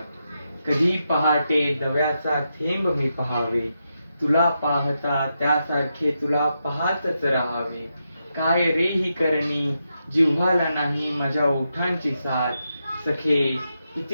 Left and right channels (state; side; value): inverted; both; correlation -0.85